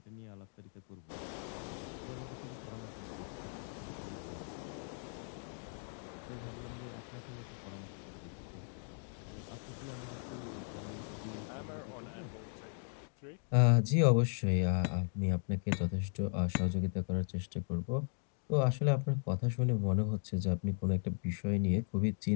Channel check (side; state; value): right; silent; 53 dB below the other